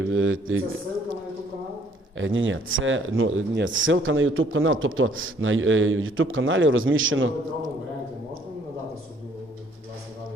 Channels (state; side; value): normal; both; correlation 0.62